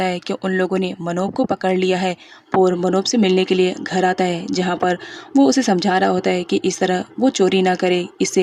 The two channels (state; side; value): identical; both; correlation 1.00